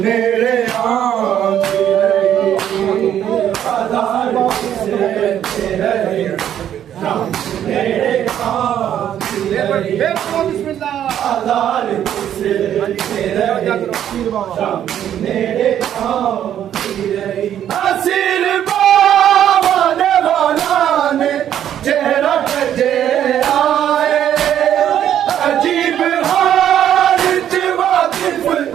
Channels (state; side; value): quieter; left; 10.4 dB